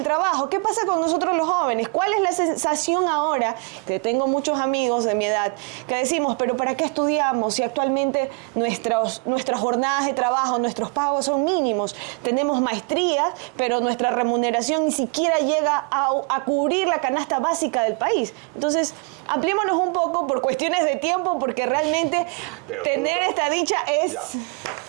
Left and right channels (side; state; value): left; quieter; 35.0 dB